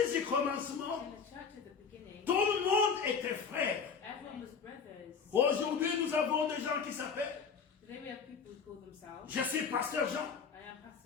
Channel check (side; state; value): right; quieter; 6.0 dB